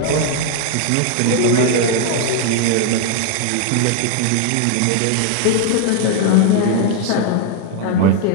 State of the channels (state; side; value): different; both; correlation 0.00